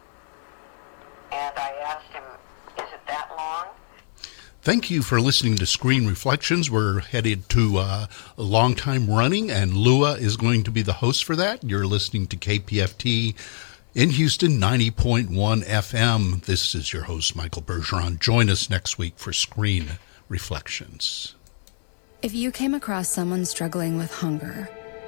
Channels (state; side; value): silent; right; digital silence